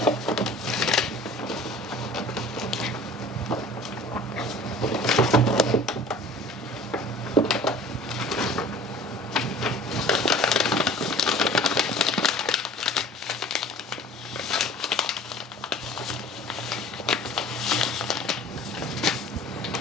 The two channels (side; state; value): both; normal; correlation 0.45